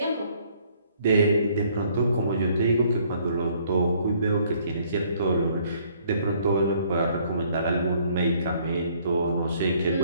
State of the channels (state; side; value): inverted; both; correlation -0.63